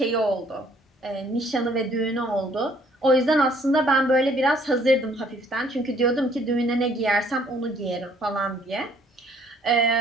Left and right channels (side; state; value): both; normal; correlation 0.61